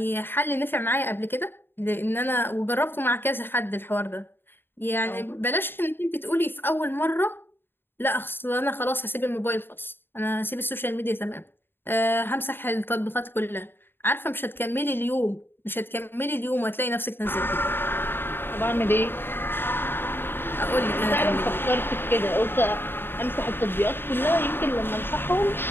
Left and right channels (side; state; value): right; late; 0.10 ms